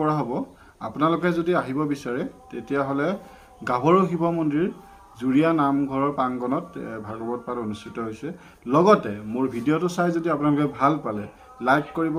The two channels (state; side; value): identical; both; correlation 1.00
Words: কৰা হ'ব। আপোনালোকে যদি আহিব বিচাৰে তেতিয়াহ'লে গাভৰু শিৱ মন্দিৰ জুৰীয়া নামঘৰৰ প্ৰাংগণত ভাগৱত পাঠ অনুষ্ঠিত হৈছে। লগতে মোৰ ভিডিঅ'টো চাই যদি আপোনালোকে ভাল পালে লাইক কৰিব,